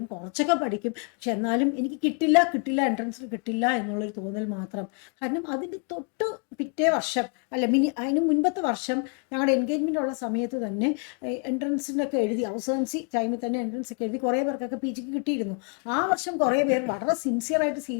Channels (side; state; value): right; quieter; 38.6 dB